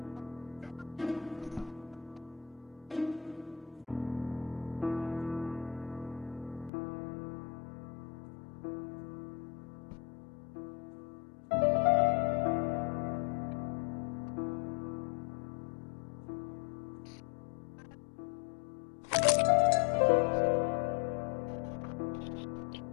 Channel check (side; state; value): right; drops out; at 6.7 s